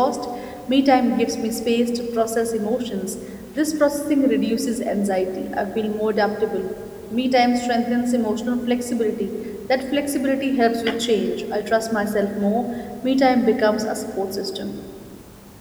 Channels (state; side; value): identical; both; correlation 1.00